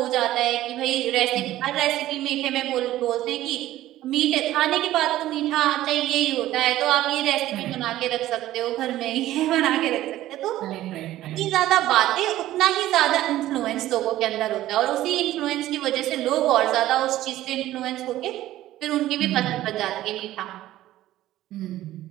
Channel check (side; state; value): left; quieter; 14.5 dB